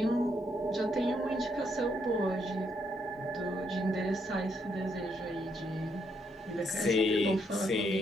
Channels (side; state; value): both; normal; correlation 0.75